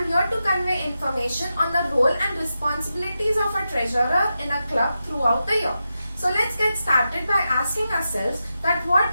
here to convey information on the role and responsibilities of a treasurer in a club throughout the year. So let's get started by asking ourselves that what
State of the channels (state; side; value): inverted; both; correlation -0.90